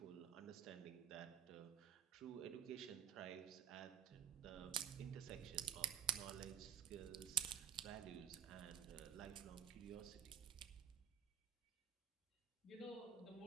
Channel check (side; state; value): left; quieter; 8.8 dB